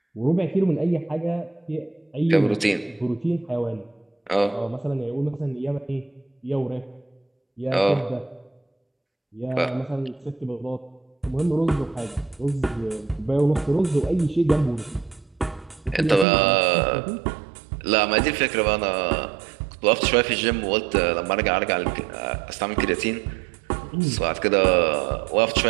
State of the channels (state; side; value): drops out; left; at 16.2 s